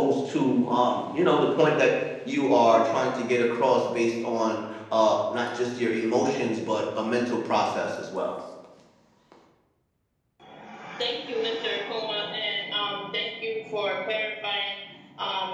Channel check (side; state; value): both; identical; correlation 1.00